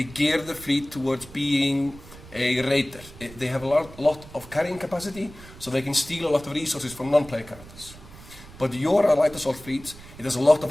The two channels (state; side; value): noise; right; rumble, 18 dB below the sound